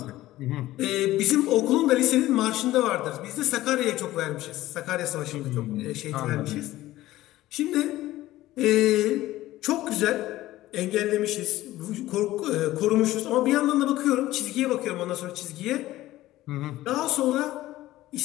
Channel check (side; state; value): right; quieter; 15.9 dB